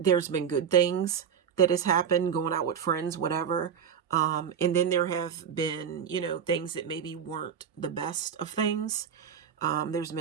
been good things that has happened, going out with friends, whatever. And then there have been, things that maybe weren't the best of things. There's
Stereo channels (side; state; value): left; quieter; 7.7 dB